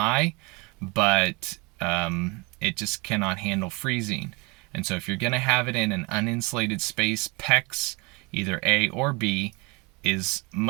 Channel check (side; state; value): left; quieter; 27.6 dB